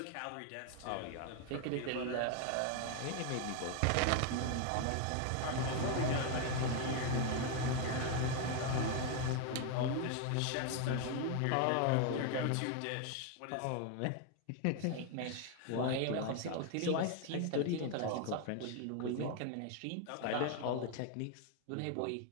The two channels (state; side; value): different; both; correlation 0.01